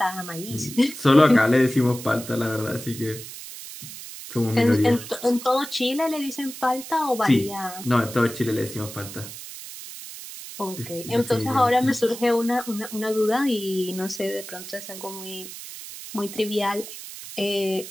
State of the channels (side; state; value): right; noise; hiss, 12 dB below the sound